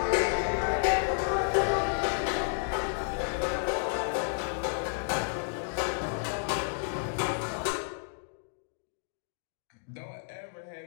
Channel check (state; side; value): silent; right; digital silence